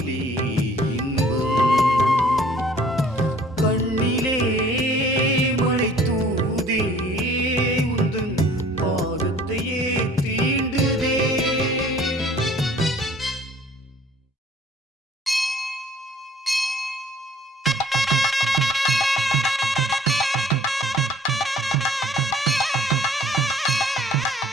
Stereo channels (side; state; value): both; normal; correlation 0.54